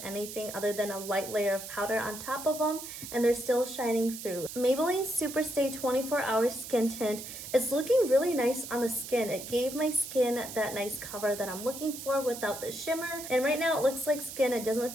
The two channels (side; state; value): right; noise; hiss, 10 dB below the sound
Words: anything other than a light layer of powder on top of them and they're still shining through. Maybelline Superstay 24-Hour Skin Tint is looking really nice on the skin. It gave my skin that nice cover that I'm looking for without the shimmer, and right now it looks like skin. It doesn't